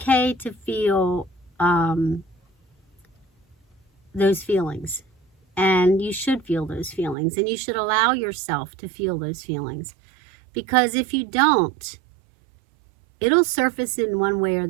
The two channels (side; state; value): left; drops out; at 7.2 s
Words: to feel those feelings. And you should feel those feelings. And you should allow yourself to feel those feelings. Because if you don't, it'll surface in one way or